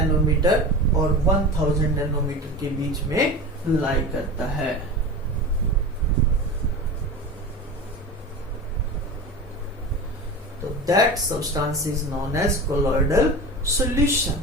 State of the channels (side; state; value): both; normal; correlation 0.30